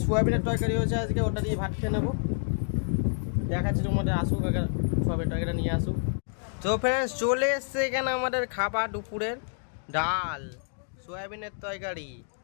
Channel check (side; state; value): right; silent; digital silence